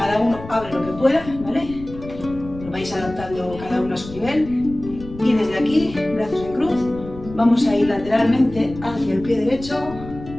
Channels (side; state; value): left; noise; rumble, 14 dB below the sound